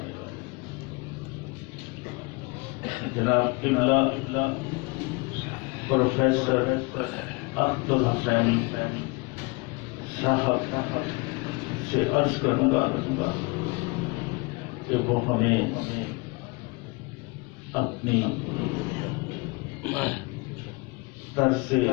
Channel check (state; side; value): quieter; right; 27.5 dB